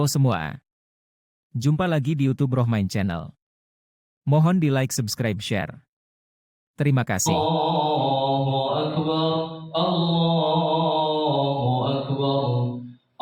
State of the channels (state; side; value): identical; both; correlation 1.00